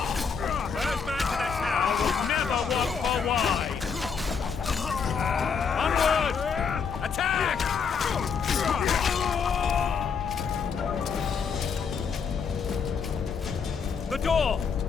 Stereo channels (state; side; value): quieter; right; 6.0 dB